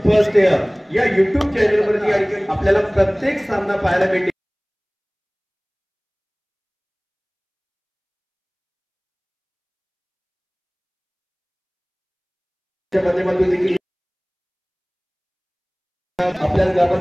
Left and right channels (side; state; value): both; identical; correlation 1.00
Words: फर्स्ट इयर या YouTube चॅनल वरती या ठिकाणी आपल्याला प्रत्येक सामना पाहायला भेटेल. माध्यमातून देखील आपल्या